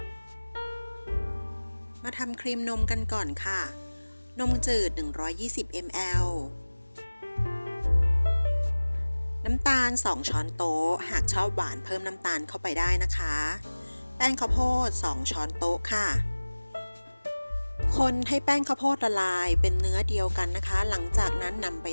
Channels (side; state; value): both; inverted; correlation -1.00